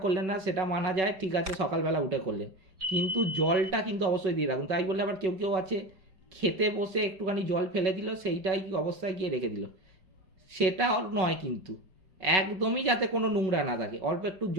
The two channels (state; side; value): late; left; 5.3 ms